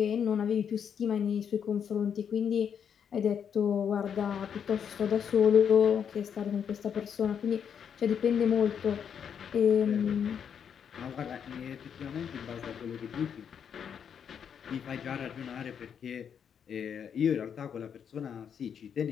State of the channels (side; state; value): right; quieter; 7.8 dB